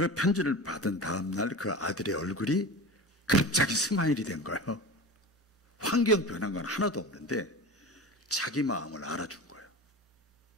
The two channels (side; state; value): both; normal; correlation 0.31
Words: 편지를 받은 다음 날 그 아들의 얼굴이 갑자기 스마일이 된 거예요. 환경 변한 건 하나도 없는데 자기 마음을 알아준 거예요.